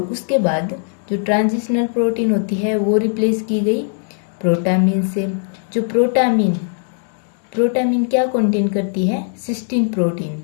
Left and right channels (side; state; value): right; silent; 65 dB below the other